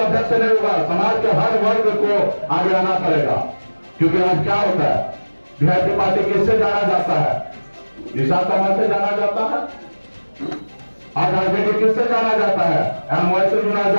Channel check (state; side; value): inverted; both; correlation -1.00